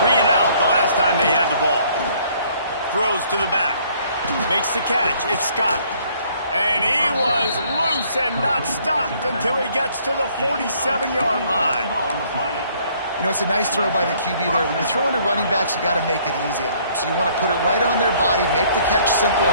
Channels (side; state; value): both; inverted; correlation -0.62